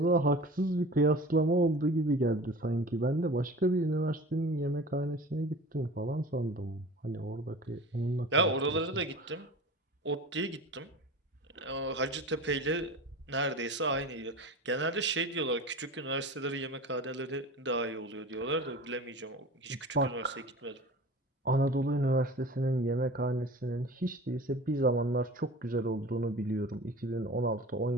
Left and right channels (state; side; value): normal; both; correlation 0.37